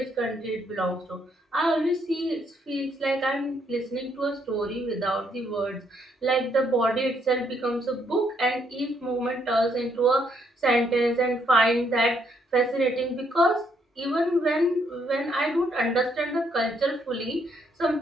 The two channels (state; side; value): normal; both; correlation 0.72